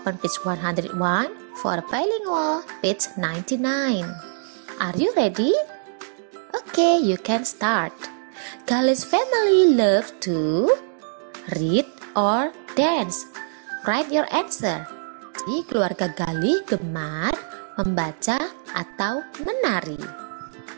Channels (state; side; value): silent; left; digital silence